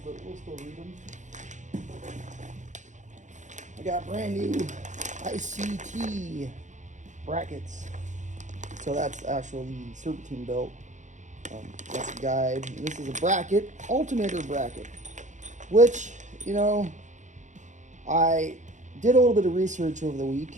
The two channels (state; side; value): late; left; 0.35 ms